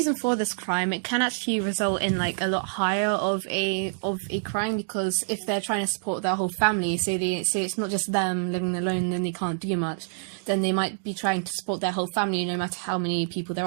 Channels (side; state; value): left; silent; digital silence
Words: for this crime, it can actually result in like a lot higher of a crime, because if they're trying to support their whole family, so it's not just them living alone, then they can't do much, then they might be trying to support their whole family no matter how many people there